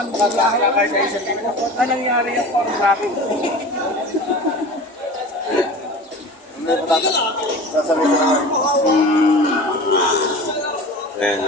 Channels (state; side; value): normal; both; correlation 0.36